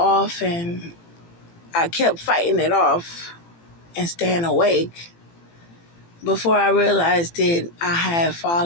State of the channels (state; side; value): late; right; 18 ms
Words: and I kept fighting it off and staying awake. Before I realized it, I had